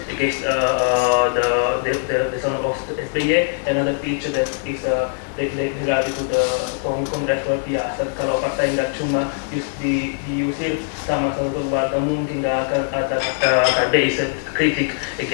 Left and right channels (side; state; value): right; silent; digital silence